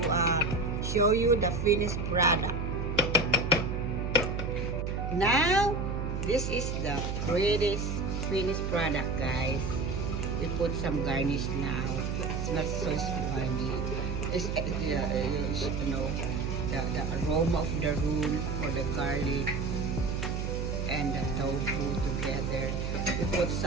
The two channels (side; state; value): right; noise; hum, 2 dB below the sound